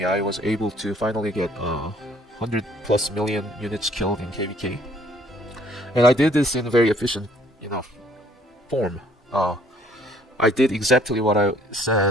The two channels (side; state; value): both; normal; correlation 0.60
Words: I was able to finally get 100+ million units killed in KVK, and I did this in a very efficient, form. I did exactly what I